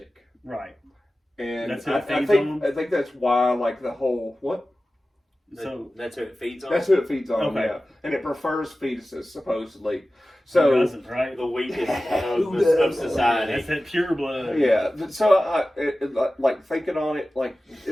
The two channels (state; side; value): normal; both; correlation 0.95